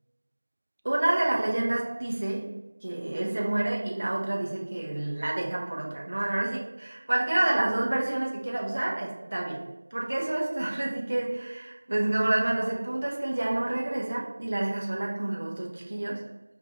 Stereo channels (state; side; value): inverted; both; correlation -1.00